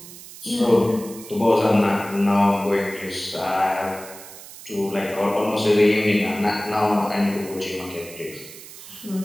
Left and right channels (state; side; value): noise; right; hiss, 16 dB below the sound